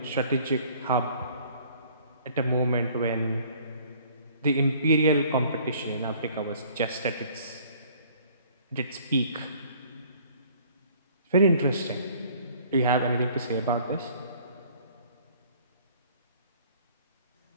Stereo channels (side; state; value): both; inverted; correlation -0.55